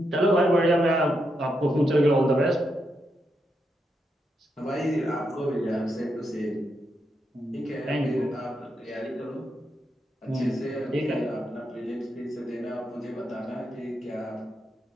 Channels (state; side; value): normal; both; correlation 0.83